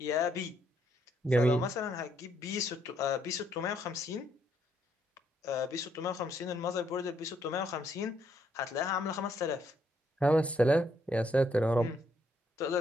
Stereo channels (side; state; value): both; normal; correlation 0.72